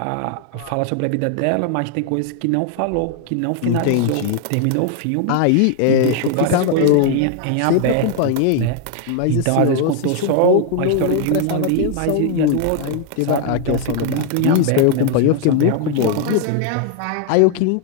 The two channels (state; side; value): different; both; correlation 0.00